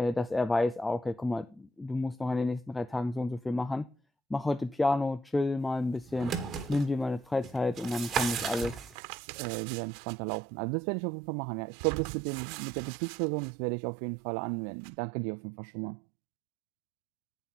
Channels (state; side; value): drops out; left; at 9.0 s